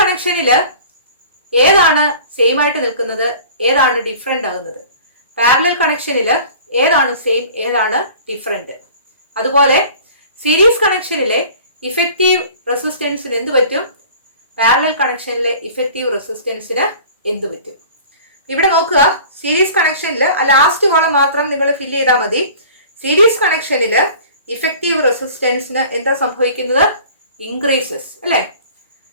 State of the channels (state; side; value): inverted; both; correlation -0.45